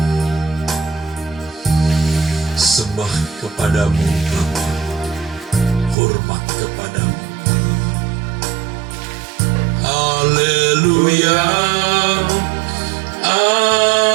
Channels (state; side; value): drops out; left; at 6.0 s